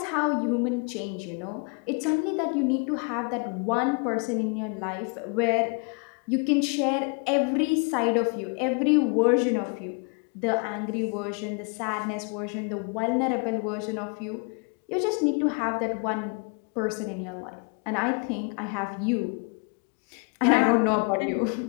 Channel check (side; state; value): right; quieter; 35.9 dB